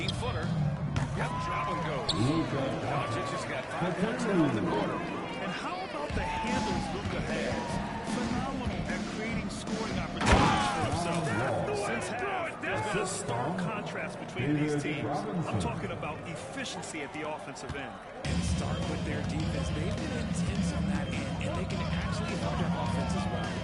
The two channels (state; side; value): identical; both; correlation 1.00